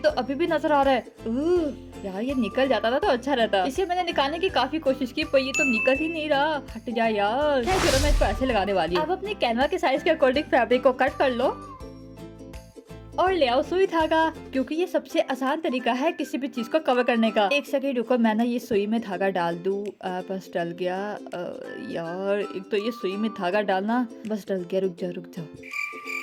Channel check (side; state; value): both; identical; correlation 1.00